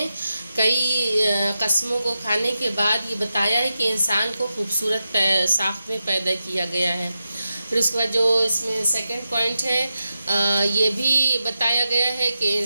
کئی قسموں کو کھانے کے بعد یہ بتایا ہے کہ انسان کو خوبصورت ساخت میں پیدا کیا گیا ہے۔ پھر اس کے بعد جو اس میں سیکنڈ پوائنٹ ہے، یہ بھی بتایا گیا ہے کہ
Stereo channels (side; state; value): both; inverted; correlation -0.89